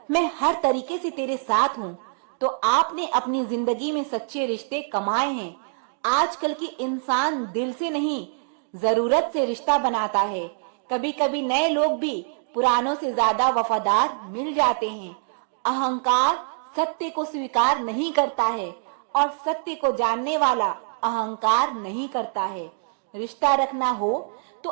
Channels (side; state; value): left; silent; digital silence